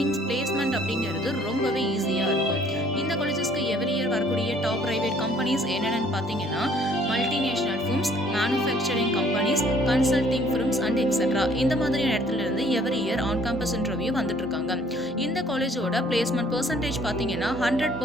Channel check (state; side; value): normal; both; correlation 0.59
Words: பிளேஸ்மெண்ட் அப்படிங்கிறது ரொம்பவே ஈஸியாக இருக்கும். இந்த காலேஜஸ்க்கு எவ்ரி இயர் வரக்கூடிய டாப் பிரைவேட் கம்பெனிஸ் என்னென்னு பார்த்தீங்கன்னா multinational firms, manufacturing companies, consulting firms and etcetera இந்த மாதிரியான இடத்துல இருந்து every year on campus interview வந்துட்டு இருக்காங்க. இந்த காலேஜோட பிளேஸ்மெண்ட் பெர்சன்டேஜ் பார்த்தீங்கன்னா